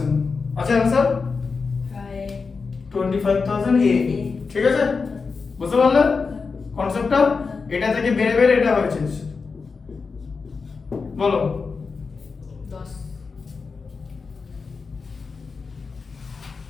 আছে आंसर 25,000 এ ঠিক আছে বুঝতে পারলে কনসেপ্টটা এটা থেকে বের বের এটা হয়েছে বলো 10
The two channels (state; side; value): quieter; right; 4.8 dB